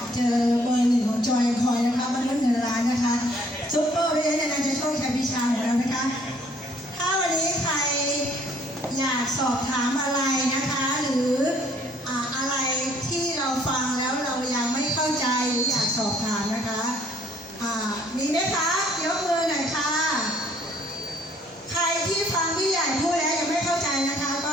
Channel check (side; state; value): both; normal; correlation 0.61